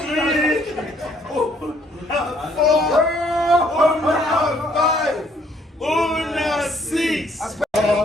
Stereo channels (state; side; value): normal; both; correlation 0.65